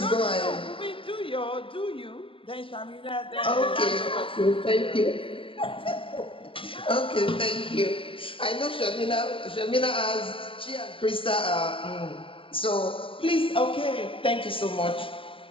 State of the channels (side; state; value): right; late; 0.26 ms